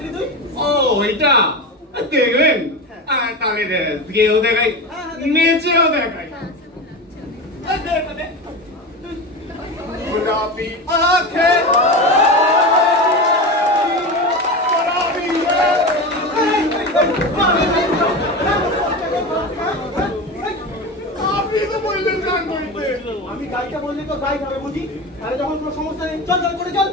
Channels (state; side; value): normal; both; correlation 0.24